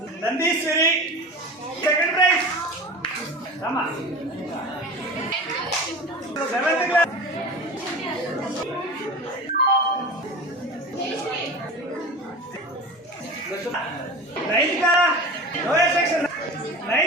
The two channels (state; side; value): normal; both; correlation 0.33